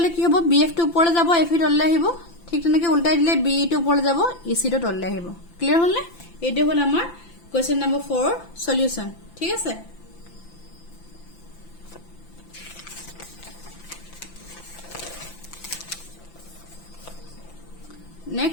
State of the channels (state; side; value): late; right; 5.9 ms